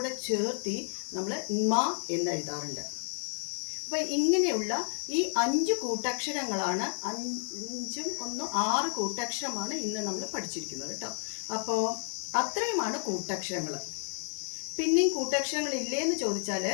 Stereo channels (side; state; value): right; silent; digital silence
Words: ചേർത്തി നമ്മൾ ന്മ എന്ന് എഴുതാറുണ്ട്. അപ്പോൾ ഇങ്ങനെയുള്ള ഈ 5 കൂട്ടക്ഷരങ്ങളാണ്, 5ഉം 1 6 കൂട്ടക്ഷരമാണ് ഇന്ന് നമ്മൾ പഠിച്ചിരിക്കുന്നത് കേട്ടോ. അപ്പോൾ അത്രയുമാണ് കൂട്ടക്ഷരങ്ങൾ. പിന്നെയും കൂട്ടക്ഷരങ്ങൾ ഇല്ലേന്ന് ചോദിച്ചാൽ